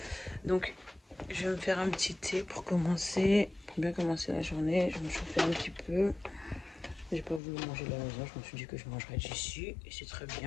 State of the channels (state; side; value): drops out; right; at 7.4 s